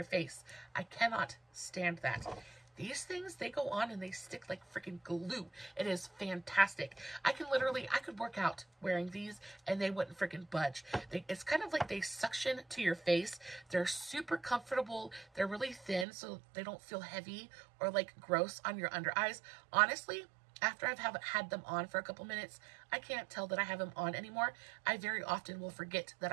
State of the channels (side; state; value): left; drops out; at 16.1 s